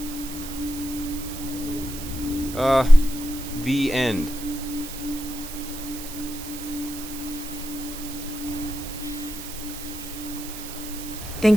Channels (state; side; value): noise; right; hiss, 11 dB below the sound